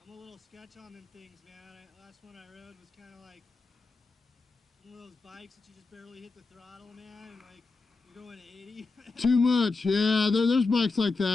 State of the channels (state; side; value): quieter; right; 3.9 dB